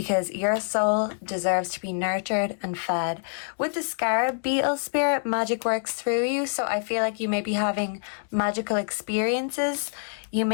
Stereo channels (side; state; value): right; silent; digital silence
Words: your soul deserves to be nurtured and fed. With the scarab beetle spirit, magic works through you, so I feel like you may be having magical experiences. You